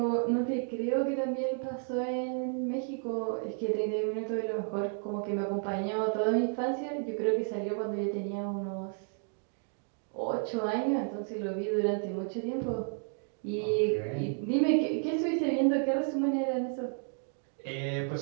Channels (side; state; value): left; silent; 56 dB below the other